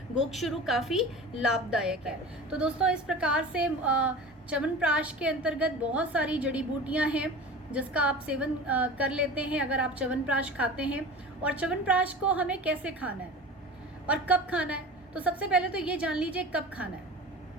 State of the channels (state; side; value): normal; both; correlation 0.35